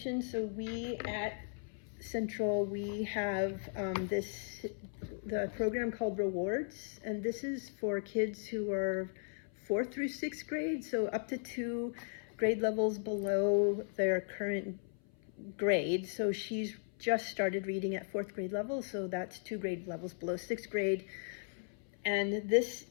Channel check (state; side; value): silent; right; 53 dB below the other